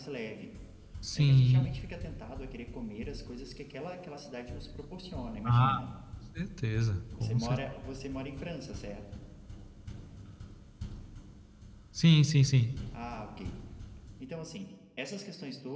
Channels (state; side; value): identical; both; correlation 1.00